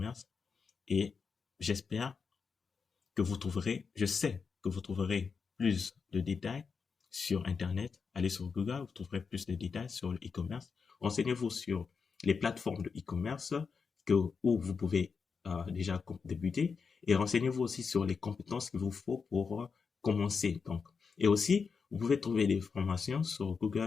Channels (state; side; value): quieter; right; 5.5 dB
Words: et j'espère que vous trouverez, je sais que vous trouverez plus de détails sur Internet. Allez sur Google, vous trouverez plus de détails sur le e-commerce. Renseignez-vous sur les plateformes de e-commerce où vous pouvez déjà débuter et renseignez-vous aussi sur les compétences qu'il vous faut pour commencer. Donc, et aussi, vous pouvez trouver des formations sur